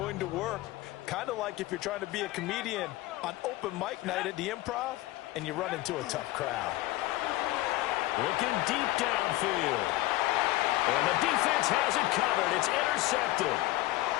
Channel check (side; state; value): right; quieter; 17.7 dB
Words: to work. Kind of like if you're trying to be a comedian on open mic night at the Improv and you run into a tough crowd. Looking deep downfield. And the defense has it covered. It's intercepted.